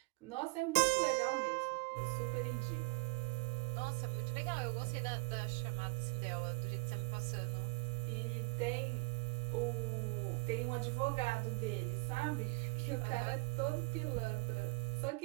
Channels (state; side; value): quieter; left; 29.5 dB